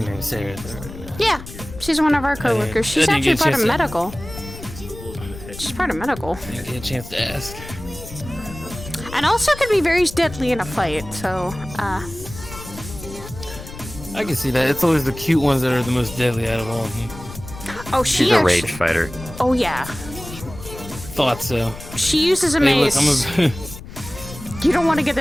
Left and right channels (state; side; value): noise; left; rumble, 14 dB below the sound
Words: name, Sarah. Yeah, she's one of our coworkers. She's actually part of medical. She's part of medical. Didn't get a chance to ask. And also could be very deadly in a fight, so, I can see that. It's always the cute ones that are the most deadly out of all of them. Oh, she's a rage fighter. Oh, yeah. Thought so. She uses a Hey, mace. look, You don't want to get